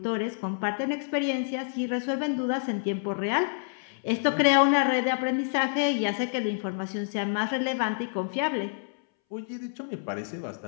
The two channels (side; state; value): right; silent; 59 dB below the other